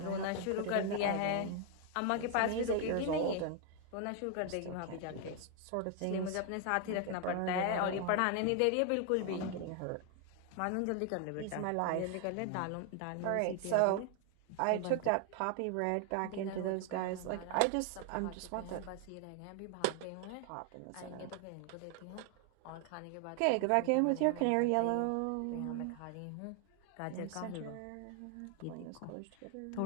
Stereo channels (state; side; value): different; both; correlation 0.00